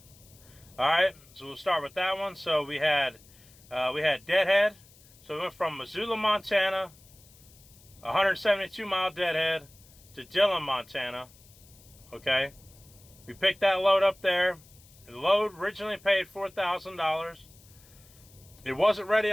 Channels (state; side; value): noise; left; hiss, 25 dB below the sound